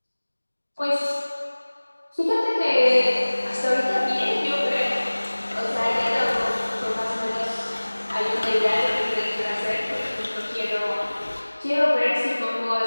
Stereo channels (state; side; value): inverted; both; correlation -1.00